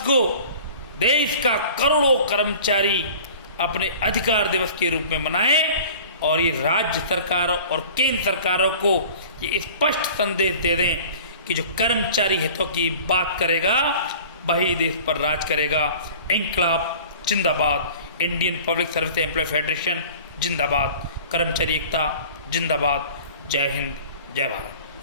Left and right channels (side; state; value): both; inverted; correlation -0.43